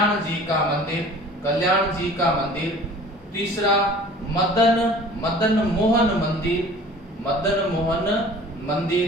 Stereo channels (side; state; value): both; normal; correlation 0.46